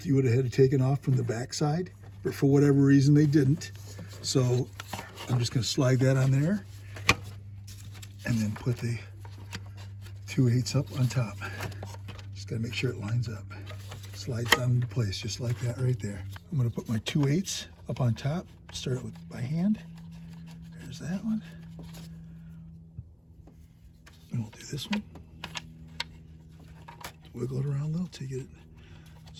you would have had it taken off from the back side. But for whatever reason they didn't. So I'm just going to slide that on there. And then put the 2/8 up on top. Just got to make sure it lines up. Slides down into place just like that right there. I'm going to put my 2/8 up on top. Start it with by hand. There's that one. And we'll do this one. wiggle it around a little till you get it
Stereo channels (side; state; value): both; identical; correlation 1.00